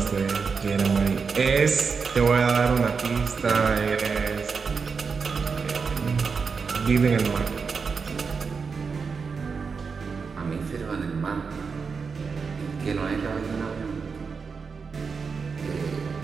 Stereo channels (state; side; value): quieter; left; 5.3 dB